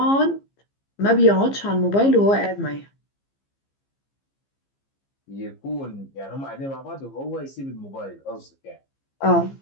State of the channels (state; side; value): late; right; 15 ms